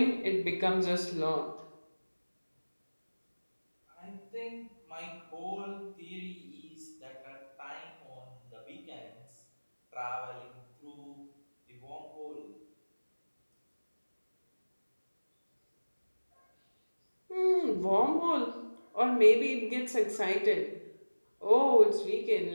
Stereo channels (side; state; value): both; inverted; correlation -1.00